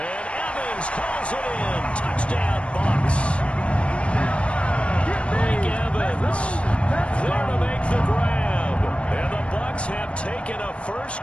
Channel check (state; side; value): late; right; 0.060 ms